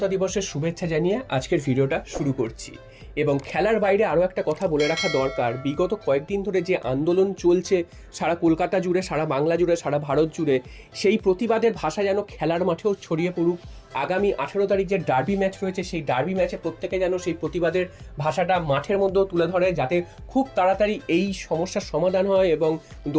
দিবসের শুভেচ্ছা জানিয়ে আজকের ভিডিওটা শুরু করছি। এবং খেলার বাইরে আরও একটা কথা বলে রাখা দরকার, বিগত কয়েকদিন ধরে যে আন্দোলন চলছে সারা কলকাতা জুড়ে, সারা বাংলা জুড়ে, সারা ভারত জুড়ে, সেই প্রতিবাদের ভাষা যেন খেলার মাঠেও ছড়িয়ে পড়ুক। আগামী 18 তারিখ যে ডার্বি ম্যাচ রয়েছে, সেই ডার্বি ম্যাচে প্রত্যেকে যেন সেই প্রতিবাদের ভাষাটা মাঠের মধ্যেও তুলে ধরে, যাতে খুব তাড়াতাড়ি এই সমস্যার সমাধান হয় এবং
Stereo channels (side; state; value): both; identical; correlation 1.00